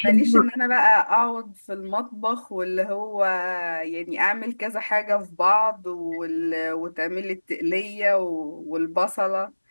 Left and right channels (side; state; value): both; inverted; correlation -1.00